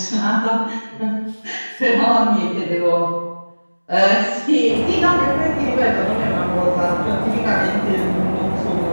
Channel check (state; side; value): inverted; both; correlation -1.00